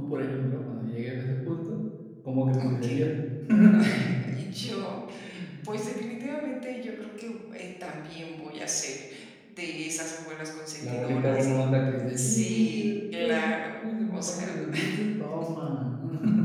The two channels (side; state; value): both; identical; correlation 1.00